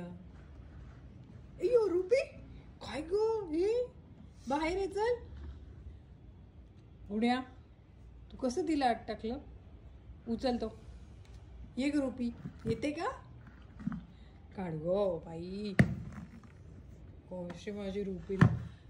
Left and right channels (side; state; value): both; identical; correlation 1.00